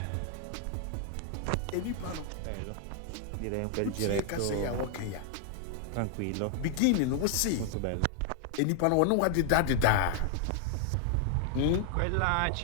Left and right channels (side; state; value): both; different; correlation 0.00